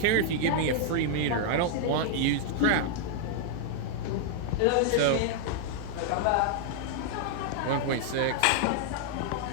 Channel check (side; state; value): both; different; correlation -0.01